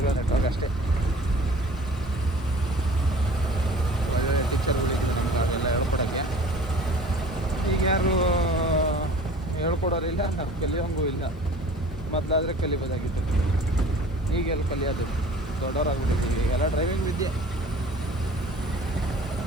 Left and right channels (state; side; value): normal; both; correlation 0.46